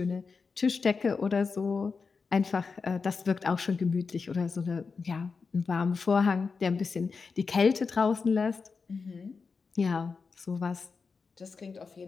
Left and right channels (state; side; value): quieter; right; 4.9 dB